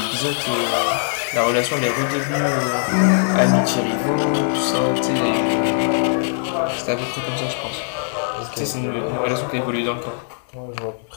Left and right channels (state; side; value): silent; right; 65 dB below the other